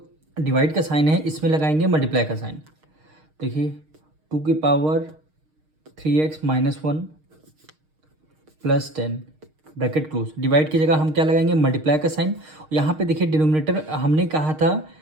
डिवाइड का साइन है इसमें लगाएंगे मल्टीप्लाई का साइन। देखिए 2^3x-1 + 10 ब्रैकेट क्लोज। डिवाइड की जगह हम क्या लगाएंगे, मल्टीप्लाई का साइन। यहाँ पे देखिए डिनोमिनेटर हमने कहा था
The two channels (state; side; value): late; left; 6.5 ms